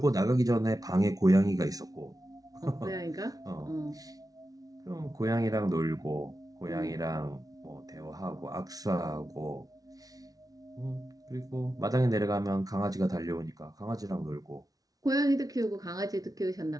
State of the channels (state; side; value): late; left; 0.18 ms